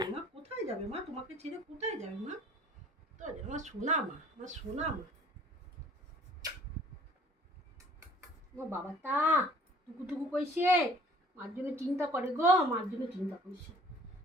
মা কোথায় যাবে? মা তোমাকে ছেড়ে কোথায় যাবে? মা তো আমার সোনা মা, আমার সোনা মা। আমার বাবা তা টুকু কইছে, মার জন্য চিন্তা করে গো, মার জন্য চিন্তা করছে।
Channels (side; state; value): both; normal; correlation 0.53